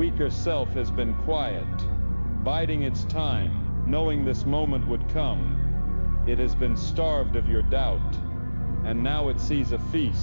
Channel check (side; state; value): both; inverted; correlation -1.00